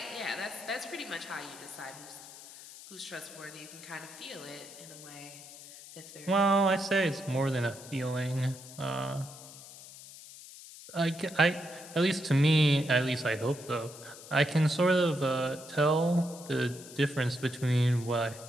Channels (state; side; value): noise; left; hiss, 16 dB below the sound